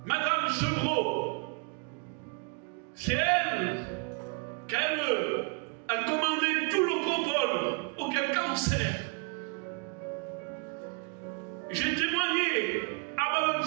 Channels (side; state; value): left; quieter; 34.8 dB